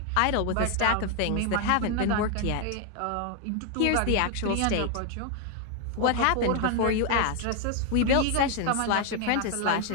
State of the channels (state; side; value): different; both; correlation 0.00